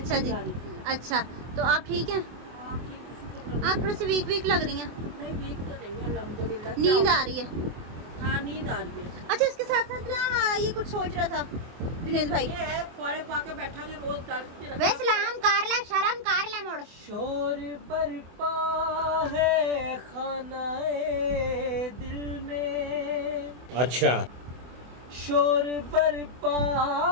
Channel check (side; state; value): left; late; 24 ms